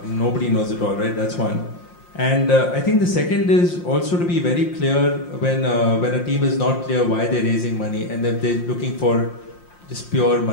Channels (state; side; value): late; right; 5.7 ms